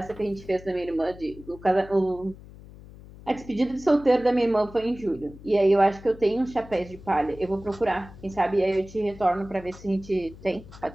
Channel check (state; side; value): noise; left; hum, 18 dB below the sound